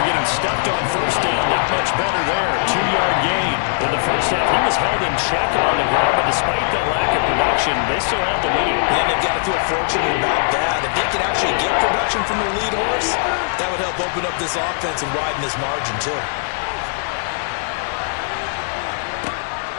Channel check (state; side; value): silent; right; digital silence